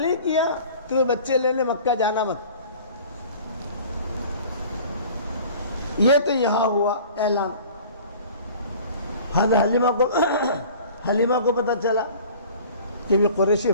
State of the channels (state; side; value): inverted; both; correlation -0.45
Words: کیا تو بچے لینے مکہ جانا مت۔ یہ تو یہاں ہوا اعلان۔ حلیمہ کو پتہ چلا کہ یہ قریشی